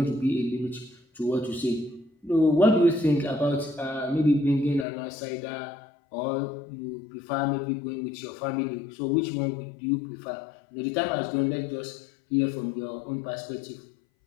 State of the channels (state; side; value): drops out; right; at 4.9 s